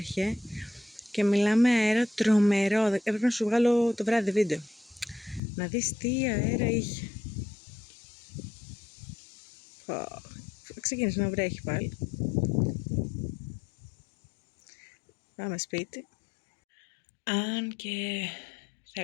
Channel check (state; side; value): drops out; right; at 5.4 s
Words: και μιλάμε αέρα τρομερό. Έπρεπε να σου βγάλω το βράδυ βίντεο. Να δεις τι αέρα είχε. Ξεκίνησε να βρέχει πάλι. Πάμε σπίτι. Αν και